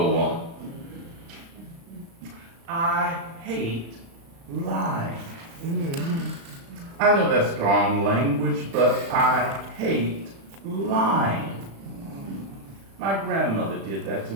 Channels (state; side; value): late; left; 36 ms